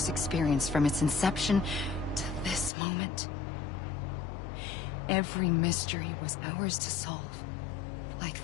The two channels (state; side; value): drops out; right; at 2.7 s